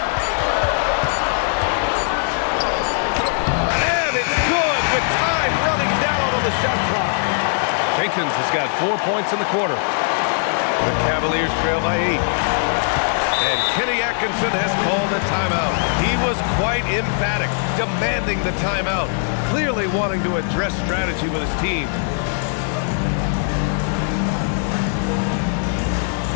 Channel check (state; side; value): silent; right; digital silence